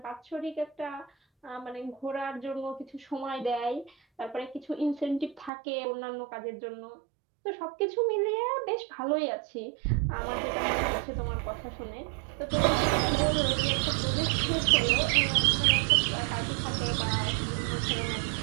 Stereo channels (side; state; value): left; drops out; at 5.5 s